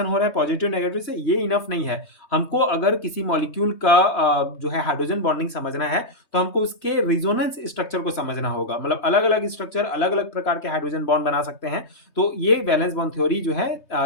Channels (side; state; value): right; late; 3.2 ms